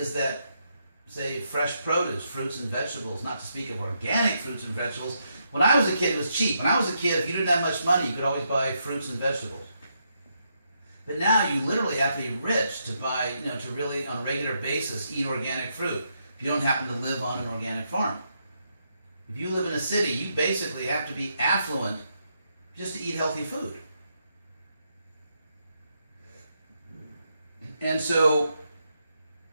that, say, fresh produce, fruits and vegetables, not to speak of organic fruits and vegetables. When I was a kid, it was cheap. When I was a kid, if you didn't have much money, you could always buy fruits and vegetables. But now you literally have to be rich to buy, to really, on a regular basis, eat organic fruit. If you don't happen to live on an organic farm. If you live in a city, you basically have to be affluent just to eat healthy food. And so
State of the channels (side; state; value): both; inverted; correlation -0.79